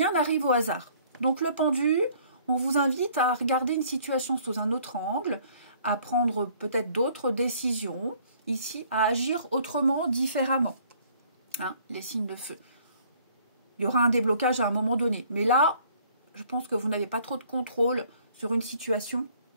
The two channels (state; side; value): inverted; both; correlation -0.58